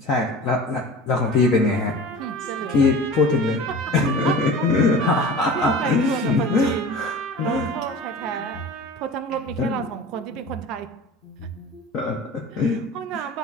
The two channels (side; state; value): both; normal; correlation 0.38